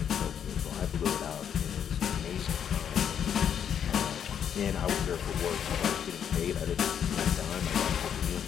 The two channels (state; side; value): quieter; right; 8.6 dB